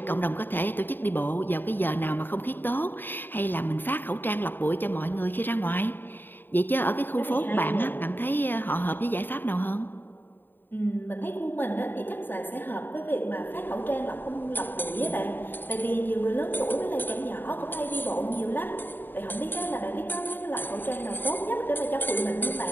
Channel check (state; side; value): late; right; 0.094 ms